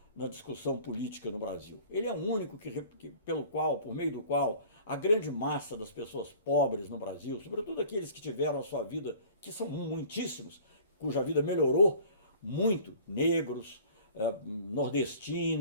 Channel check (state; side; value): inverted; both; correlation -0.48